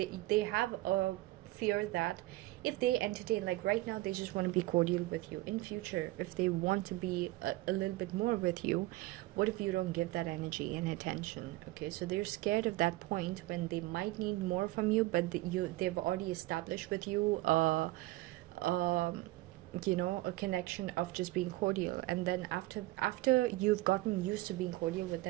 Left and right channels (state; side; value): quieter; left; 18.7 dB